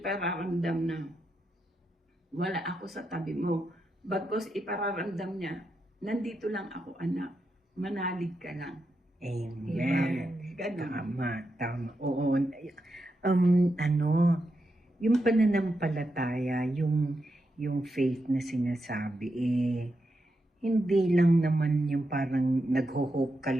na wala ako sa tabi mo. Bagkus ipararamdam niya, nandito lang ako anak. Manalig ka lang. Amen. Ganun. Tama. Oo. Yung pananampalataya, yung faith na sinasabi, hindi lang naman yung parang nagho-hope ka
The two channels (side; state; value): both; normal; correlation 0.85